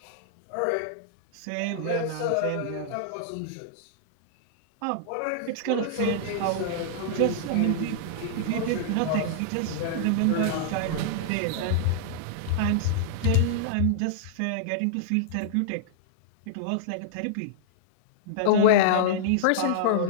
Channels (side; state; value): both; different; correlation -0.01